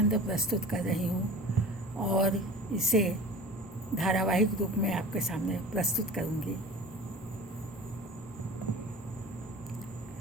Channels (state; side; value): normal; both; correlation 0.38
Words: प्रस्तुत कर रही हूँ और इसे धारावाहिक रूप में आपके सामने प्रस्तुत करूँगी।